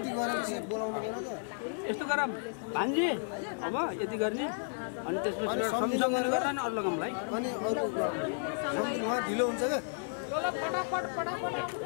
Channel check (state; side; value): silent; right; digital silence